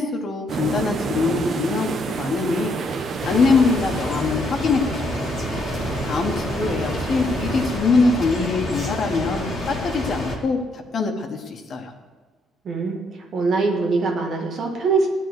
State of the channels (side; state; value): both; normal; correlation 0.72